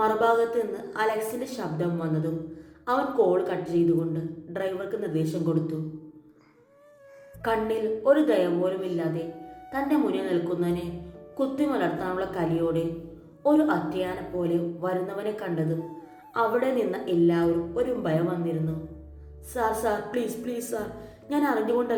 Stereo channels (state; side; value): identical; both; correlation 1.00